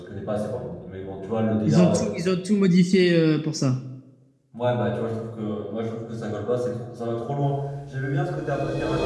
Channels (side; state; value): both; identical; correlation 1.00